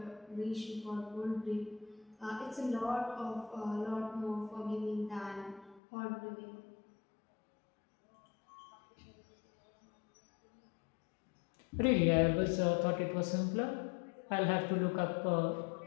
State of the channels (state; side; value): drops out; right; at 5.8 s